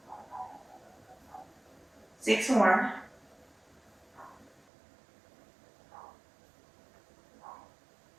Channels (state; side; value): drops out; left; at 4.6 s